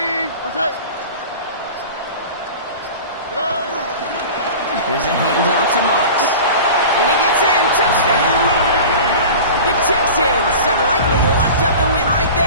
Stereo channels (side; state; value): both; inverted; correlation -0.36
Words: What's that? Here's a handoff to Marks. And he gets in. Touchdown! The Texans have likely locked up the win right